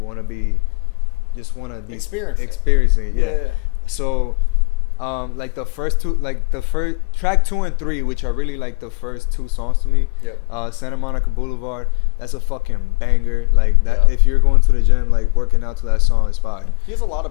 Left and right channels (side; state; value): right; quieter; 30.7 dB